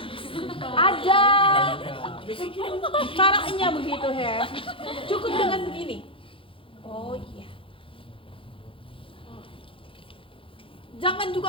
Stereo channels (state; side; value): late; right; 0.26 ms